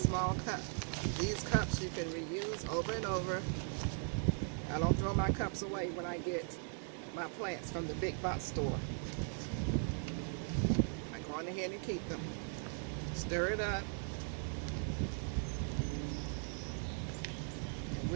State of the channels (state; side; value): silent; left; 52 dB below the other